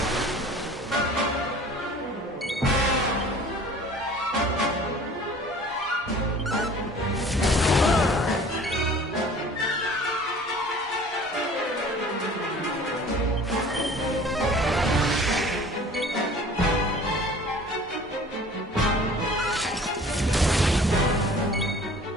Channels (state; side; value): normal; both; correlation 0.47